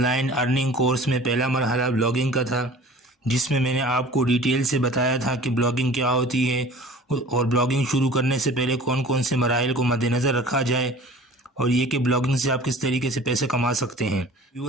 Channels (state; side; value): normal; both; correlation 0.44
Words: earning course میں پہلا مرحلہ بلاگنگ کا تھا، جس میں نے آپ کو ڈیٹیل سے بتایا تھا کہ بلاگنگ کیا ہوتی ہے اور بلاگنگ شروع کرنے سے پہلے کون کون سے مراحل کو مد نظر رکھا جائے، اور یہ کہ بلاگنگ سے آپ کس طریقے سے پیسے کما سکتے ہیں۔